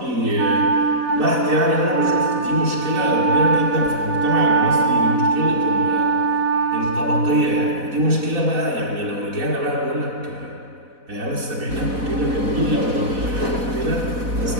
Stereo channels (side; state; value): left; late; 4.1 ms